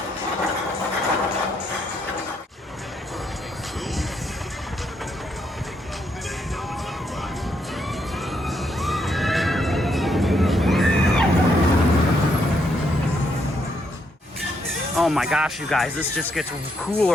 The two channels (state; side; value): normal; both; correlation 0.76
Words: Oh my gosh, you guys, this just gets